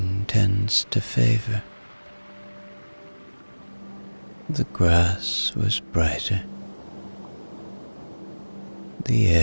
tends to favor. The grass was brighter, the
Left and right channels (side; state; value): both; inverted; correlation -1.00